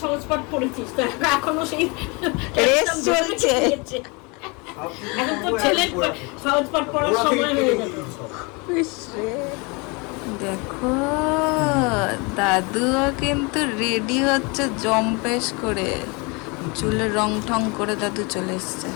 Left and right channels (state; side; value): quieter; right; 29.2 dB